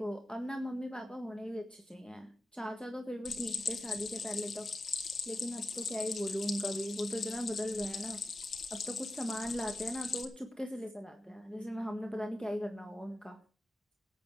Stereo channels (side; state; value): both; normal; correlation 0.92